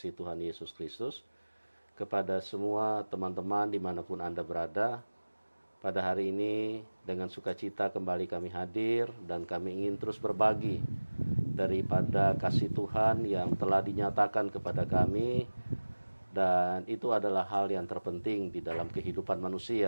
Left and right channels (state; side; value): inverted; both; correlation -1.00